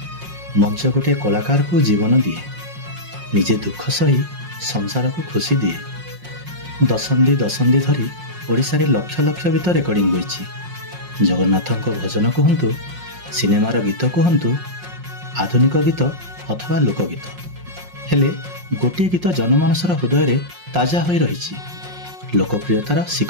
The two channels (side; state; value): left; late; 5.5 ms